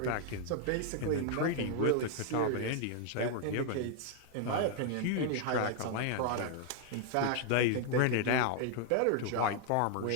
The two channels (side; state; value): both; different; correlation 0.00